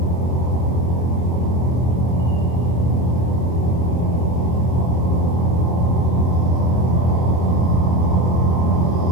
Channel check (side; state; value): right; late; 24 ms